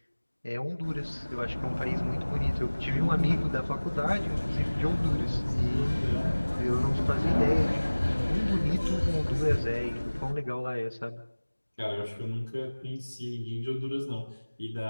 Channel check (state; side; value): inverted; both; correlation -1.00